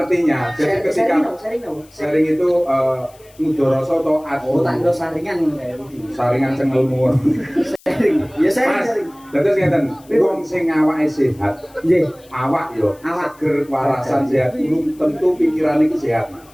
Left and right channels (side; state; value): left; noise; hiss, 27 dB below the sound